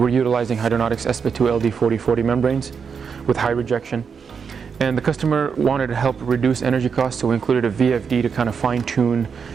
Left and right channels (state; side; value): quieter; left; 6.2 dB